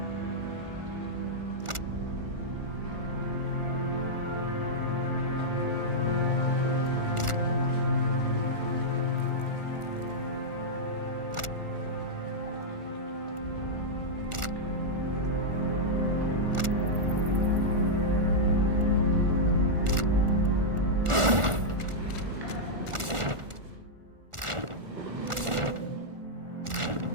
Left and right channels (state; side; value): late; left; 1.4 ms